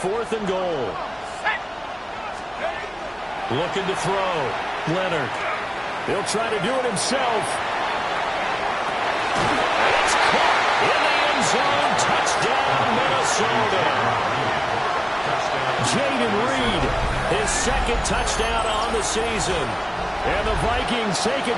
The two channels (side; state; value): both; identical; correlation 1.00